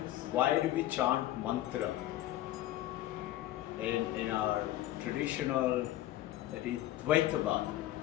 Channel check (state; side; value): quieter; right; 14.4 dB